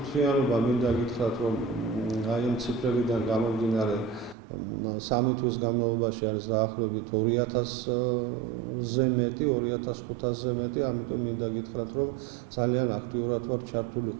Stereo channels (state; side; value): drops out; left; at 4.4 s